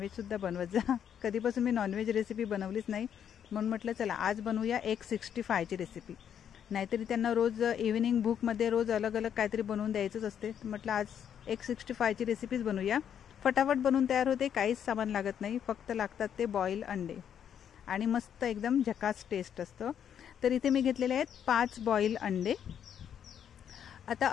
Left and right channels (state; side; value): quieter; right; 8.8 dB